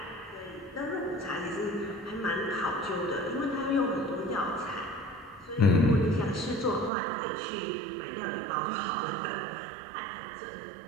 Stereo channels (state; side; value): drops out; left; at 6.9 s